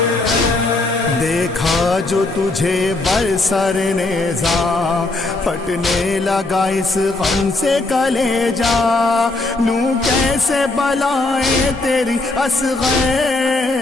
ہیں۔ دیکھا جو تجھے برسر نیزاں، پھٹنے لگا اس غم سے کلیجا، لوں کیسے بلائیں تیری اصغر،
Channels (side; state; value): right; quieter; 3.1 dB